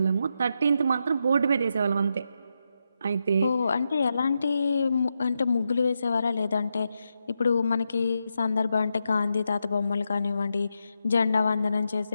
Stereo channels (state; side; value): inverted; both; correlation -0.85